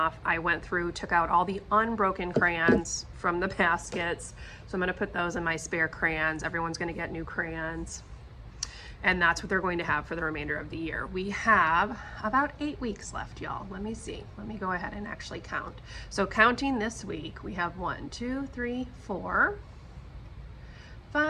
I went through, took out all the unbroken crayons from the baskets, so I'm gonna put those in my spare crayons. Everyone's gonna get new crayons. And that's what they're going to have for the remainder of the year. We have about 8 weeks left, y'all. Let me see. Let me go ahead and actually count. So counting this week, we have 1, 2, 3, 4,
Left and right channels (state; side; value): identical; both; correlation 1.00